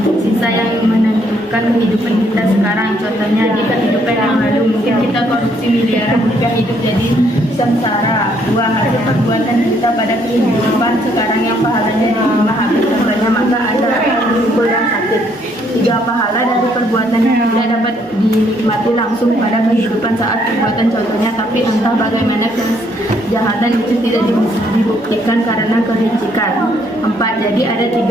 sisa yang menentukan kehidupan kita sekarang. Contohnya di kehidupan yang lalu mungkin kita korupsi miliaran rupiah, hidup jadi sengsara. 2, hasil perbuatan kita pada kehidupan sekarang yang pahalanya diterima habis. Contohnya maka ada kumpul yang sakit. 3, pahala dari perbuatan yang tidak dapat dinikmati langsung pada kehidupan saat perbuatan, contohnya tapi entah bagaimana kejahatan itu tidak dibuktikan karena kelicikan. 4, jadi ada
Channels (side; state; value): both; normal; correlation 0.69